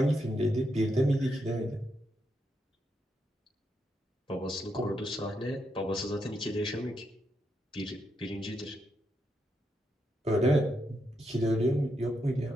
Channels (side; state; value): both; normal; correlation 0.82